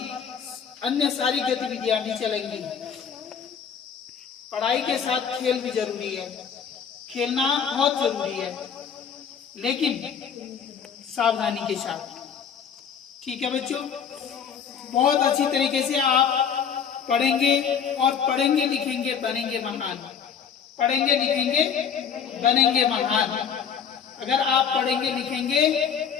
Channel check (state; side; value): quieter; right; 7.3 dB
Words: अन्य सारी गतिविधियां भी चलेंगी। पढ़ाई के साथ खेल भी जरूरी है, खेलना बहुत जरूरी है, लेकिन सावधानी के साथ, ठीक है बच्चों। बहुत अच्छी तरीके से आप पढ़ेंगे और पढ़ेंगे लिखेंगे बनेंगे महान, पढ़ेंगे लिखेंगे बनेंगे महान। अगर आप पढ़ेंगे